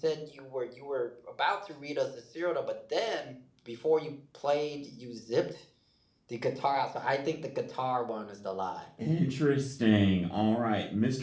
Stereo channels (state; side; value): identical; both; correlation 1.00